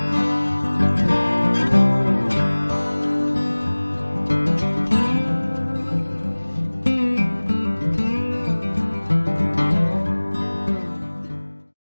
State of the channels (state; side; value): inverted; both; correlation -1.00